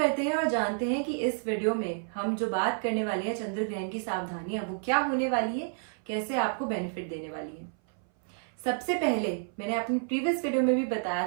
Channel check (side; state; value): left; silent; 58 dB below the other